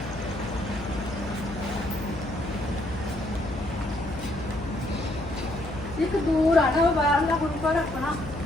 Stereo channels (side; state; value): left; noise; hum, 12 dB below the sound